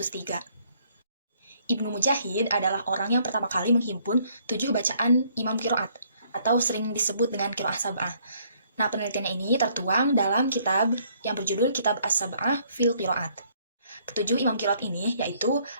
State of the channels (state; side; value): inverted; both; correlation -0.65